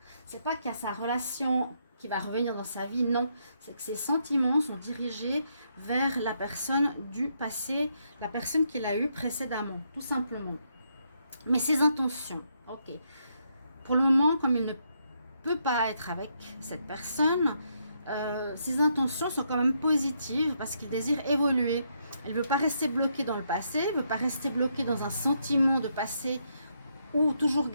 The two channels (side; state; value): both; inverted; correlation -0.77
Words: sa relation qui va revenir dans sa vie, non. C'est que ces sentiments sont dirigés vers la personne du passé, la personne qu'il a eue précédemment, tout simplement. Mais ses intentions, ok. Pour le moment, comme il ne peut pas être avec cette personne, ses intentions sont quand même positives parce qu'il désire évoluer. Il ne veut pas rester bloqué dans le passé, il ne veut pas rester bloqué dans un sentiment de passé ou toujours